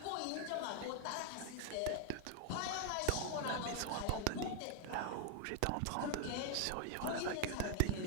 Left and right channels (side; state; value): both; different; correlation 0.00